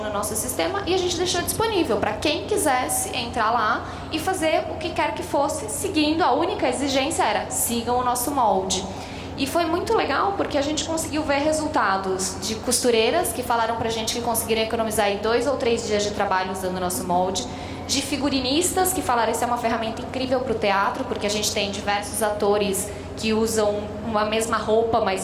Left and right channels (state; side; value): identical; both; correlation 1.00